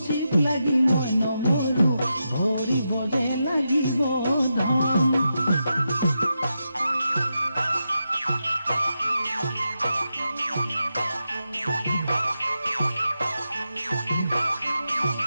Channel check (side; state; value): both; inverted; correlation -0.87